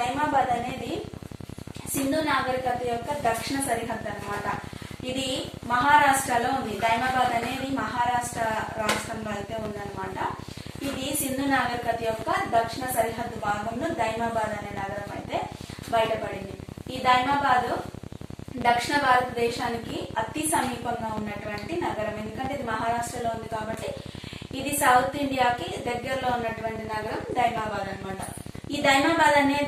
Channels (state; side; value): identical; both; correlation 1.00